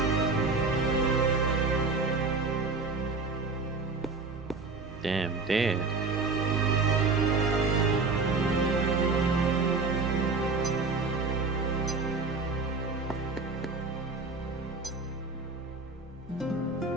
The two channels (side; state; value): left; quieter; 4.0 dB